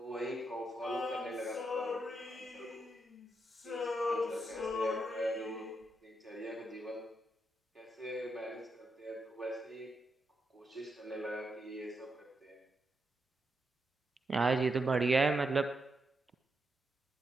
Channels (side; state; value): both; normal; correlation 0.82